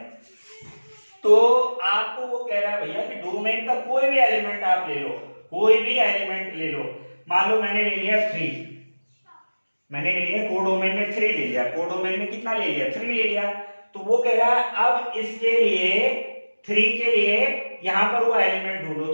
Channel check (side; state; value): both; inverted; correlation -1.00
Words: तो आपको वो कह रहा है भैया कि डोमेन का कोई भी एलिमेंट आप ले लो, कोई भी एलिमेंट ले लो। मान लो मैंने ले लिया 3, मैंने ले लिया कोडोमेन में 3 ले लिया, कोडोमेन में कितना ले लिया? 3 ले लिया। तो वो कह रहा है अब इसके लिए 3 के लिए यहां पर वो एलिमेंट ढूंढो। तो